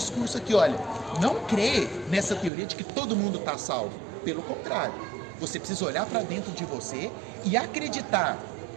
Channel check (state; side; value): drops out; left; at 2.5 s